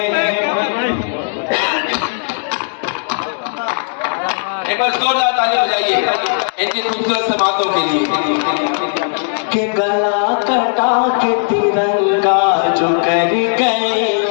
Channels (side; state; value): right; silent; digital silence